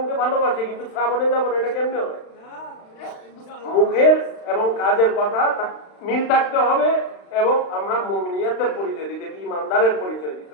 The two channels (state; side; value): late; right; 36 ms